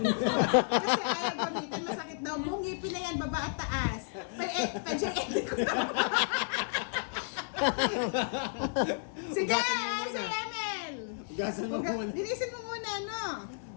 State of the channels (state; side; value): silent; right; digital silence